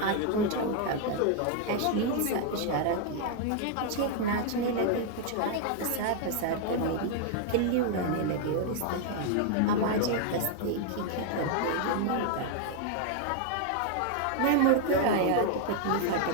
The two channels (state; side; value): different; both; correlation 0.00